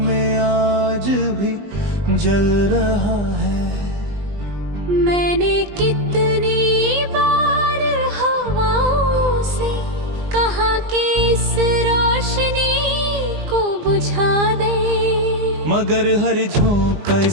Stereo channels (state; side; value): late; left; 20 ms